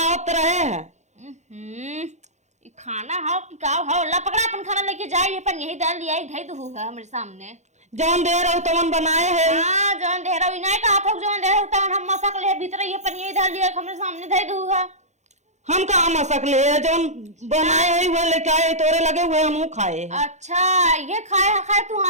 रहे हैं। ई खाना हाउ कि का हाउ ला पकड़ा अपन खाना लेके जाई अपन यही डाल दिया धई दहू है हमरे सामने जौन दे रहो तवन बनाए है। हां जौन दे रहो इनाय का हाथ जौन दे रहो तवन हम मसक ले भीतर ये अपन यही डाल दिया हमरे सामने धई दहू है। हम कहाँ मसक ले जौन बनाए है वो लेके आए तोरे लगे हुए हम खाए। अच्छा ये खाए खाए तू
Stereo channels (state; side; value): late; left; 0.33 ms